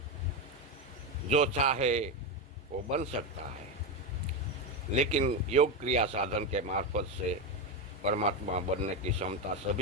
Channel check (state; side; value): normal; both; correlation 0.12